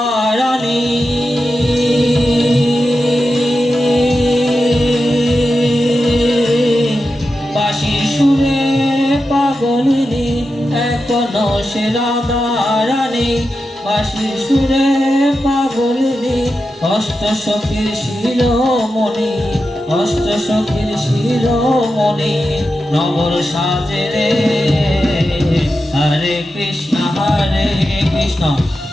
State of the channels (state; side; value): normal; both; correlation 0.90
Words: রানী পাগলিনী এখনো সে রাধা রানী বাঁশির সুরে পাগলিনী অষ্ট সখীর শিরোমণি অষ্ট সখীর শিরোমণি নগর সাজে রে হরে কৃষ্ণ